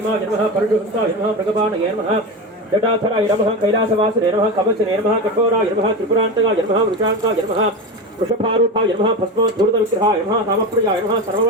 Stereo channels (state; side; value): normal; both; correlation 0.22